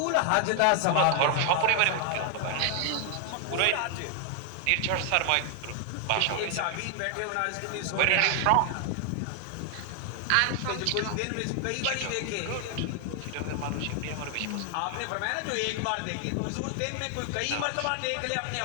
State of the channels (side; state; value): both; different; correlation 0.00